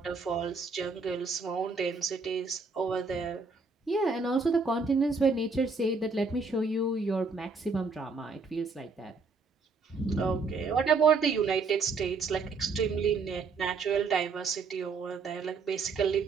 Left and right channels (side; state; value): left; quieter; 4.4 dB